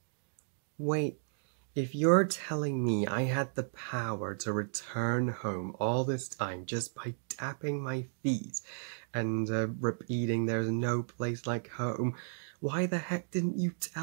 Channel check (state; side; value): silent; left; digital silence